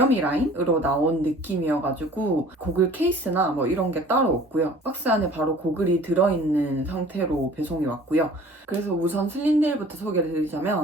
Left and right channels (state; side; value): normal; both; correlation 0.49